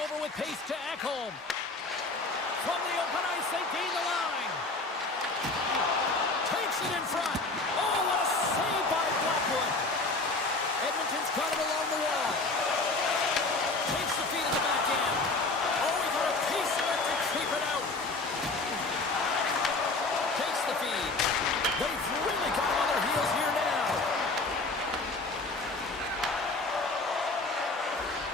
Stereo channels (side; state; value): right; quieter; 3.4 dB